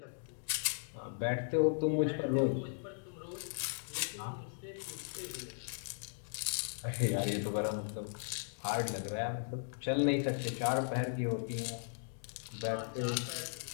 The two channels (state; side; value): silent; right; digital silence